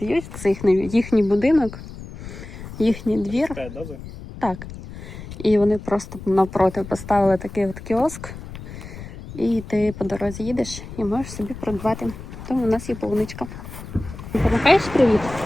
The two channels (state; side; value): noise; left; rumble, 13 dB below the sound